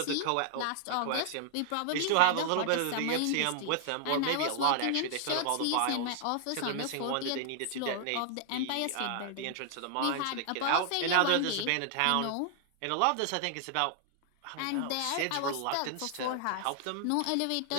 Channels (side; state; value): both; different; correlation 0.00